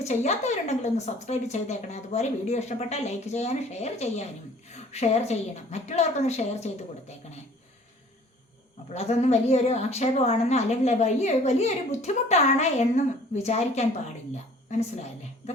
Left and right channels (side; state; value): both; normal; correlation 0.52